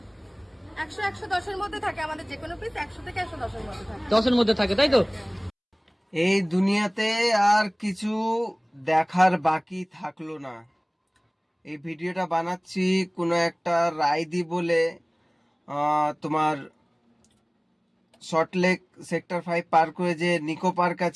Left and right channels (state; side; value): identical; both; correlation 1.00